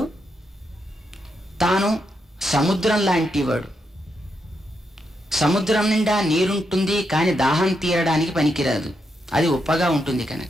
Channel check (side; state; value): both; normal; correlation 0.82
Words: తాను సముద్రం లాంటివాడు. సముద్రం నిండా నీరుంటుంది, కానీ దాహం తీరడానికి పనికిరాదు, అది ఉప్పగా ఉంటుంది